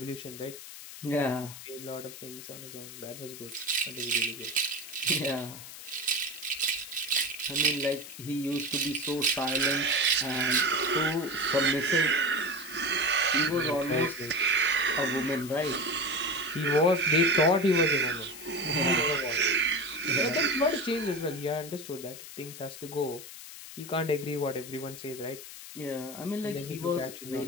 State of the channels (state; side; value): noise; left; hiss, 13 dB below the sound